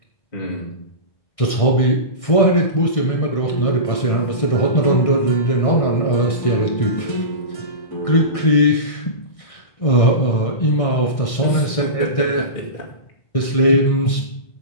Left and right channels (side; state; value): right; late; 1.6 ms